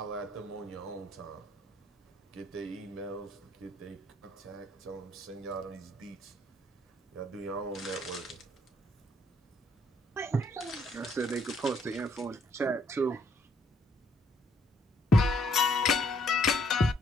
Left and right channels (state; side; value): normal; both; correlation 0.68